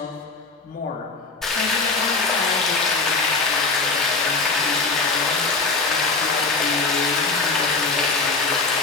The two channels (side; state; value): right; quieter; 3.9 dB